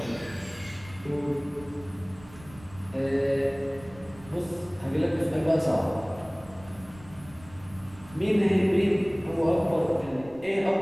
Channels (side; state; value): right; noise; rumble, 20 dB below the sound